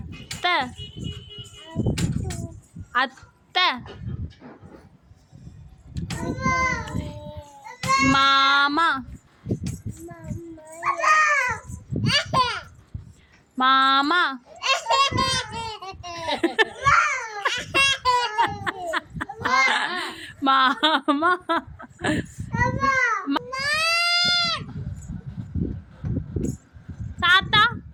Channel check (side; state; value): both; identical; correlation 1.00